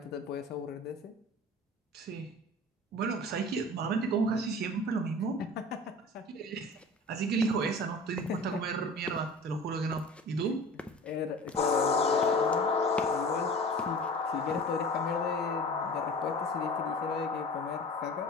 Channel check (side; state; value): both; normal; correlation 0.39